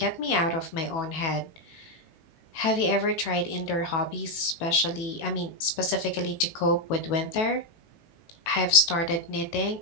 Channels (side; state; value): right; late; 18 ms